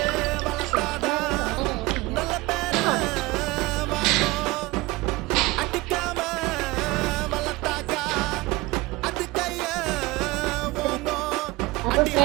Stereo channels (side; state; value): left; quieter; 21.3 dB